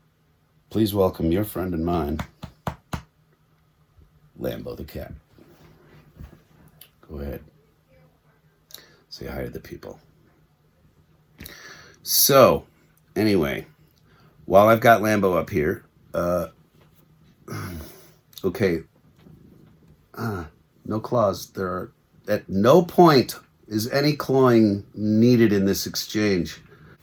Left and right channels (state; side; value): identical; both; correlation 1.00